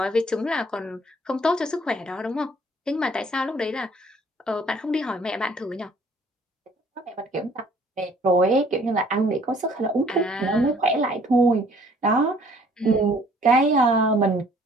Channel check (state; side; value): normal; both; correlation 0.58